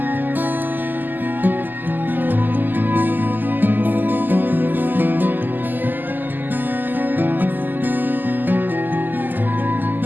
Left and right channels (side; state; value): left; late; 0.088 ms